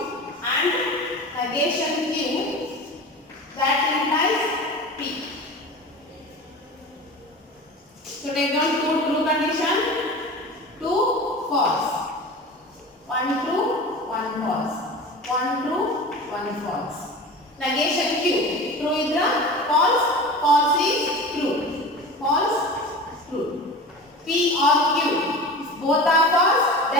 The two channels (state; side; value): normal; both; correlation 0.34